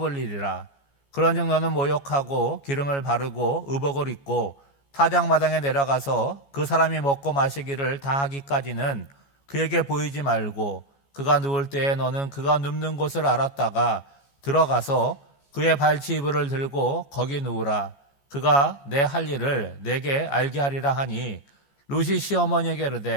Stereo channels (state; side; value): late; right; 14 ms